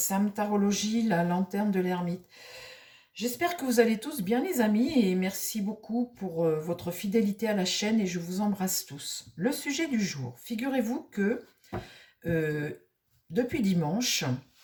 Tarologie, la lanterne de l'ermite. J'espère que vous allez tous bien les amis et merci beaucoup pour votre fidélité à la chaîne et je vous embrasse tous. Le sujet du jour, figurez-vous que euh, depuis dimanche,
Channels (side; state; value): both; identical; correlation 1.00